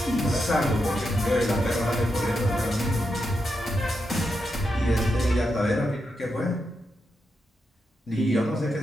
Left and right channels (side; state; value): both; normal; correlation 0.85